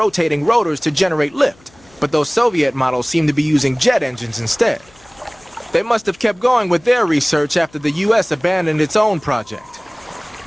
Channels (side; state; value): left; noise; hum, 29 dB below the sound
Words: rotors to generate lift, but those Soviet models seem to be using jet engines instead. They must have kept going with their research after the US abandoned its own project.